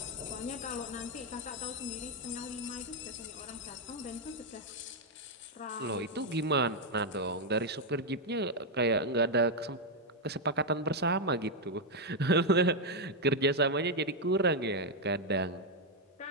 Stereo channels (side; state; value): both; normal; correlation 0.01